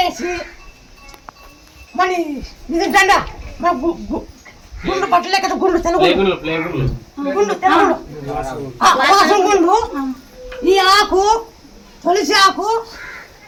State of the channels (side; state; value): both; identical; correlation 1.00